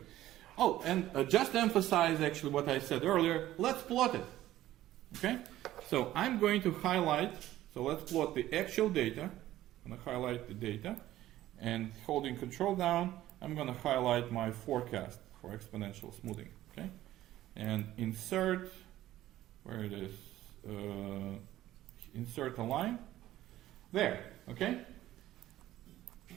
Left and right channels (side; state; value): left; quieter; 14.3 dB